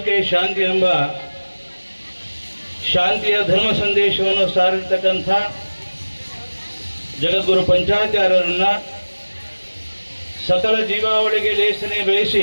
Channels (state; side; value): inverted; both; correlation -1.00